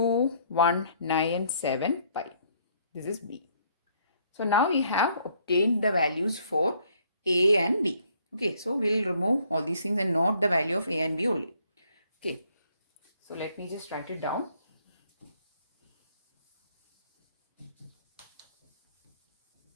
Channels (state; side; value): inverted; both; correlation -0.65